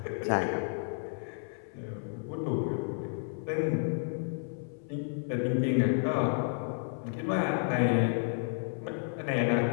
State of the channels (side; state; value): right; silent; 56 dB below the other